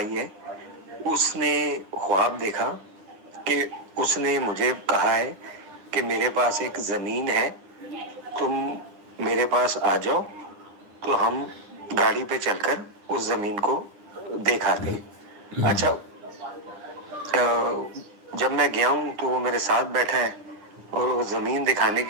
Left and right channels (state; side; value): late; left; 9.8 ms